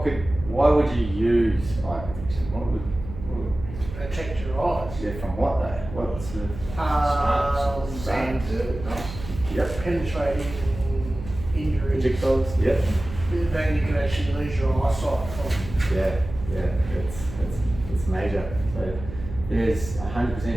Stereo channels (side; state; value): right; noise; hum, 11 dB below the sound